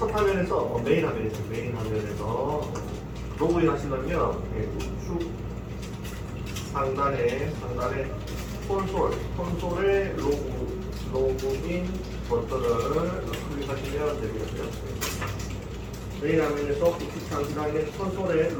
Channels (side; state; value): both; identical; correlation 1.00